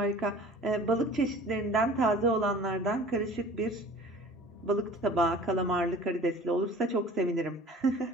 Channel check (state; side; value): normal; both; correlation 0.45